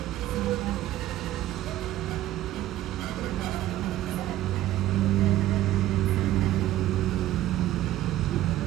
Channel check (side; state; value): left; quieter; 14.1 dB